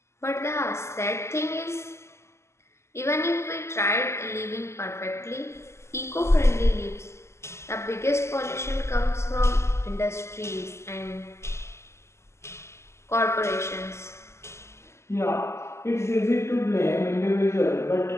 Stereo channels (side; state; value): right; late; 0.13 ms